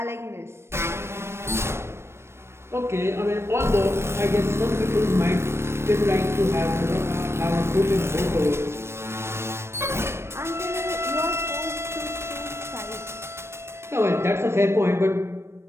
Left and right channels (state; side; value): late; left; 0.12 ms